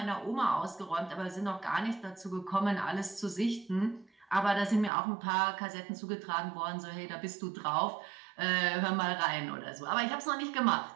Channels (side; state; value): left; drops out; at 4.9 s